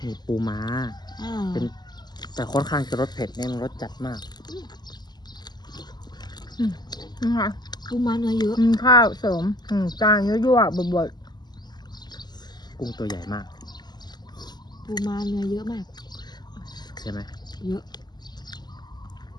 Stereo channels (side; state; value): right; late; 0.21 ms